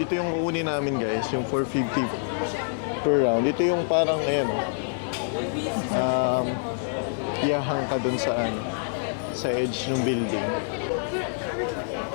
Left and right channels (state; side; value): silent; right; digital silence